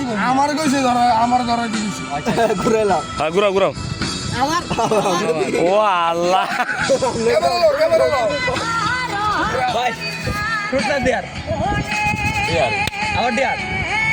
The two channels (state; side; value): identical; both; correlation 1.00